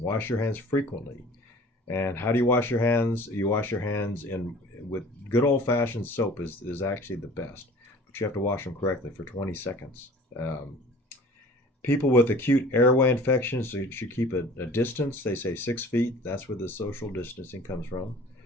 your hands frequently. And how do you wash your hands? You wash your hands with good old-fashioned soap is actually the best, but you have to wash them correctly for 20 seconds. People with acute airway infections, so you should keep a distance. They say 6 feet. That's where the social distancing comes from.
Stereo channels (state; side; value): normal; both; correlation 0.46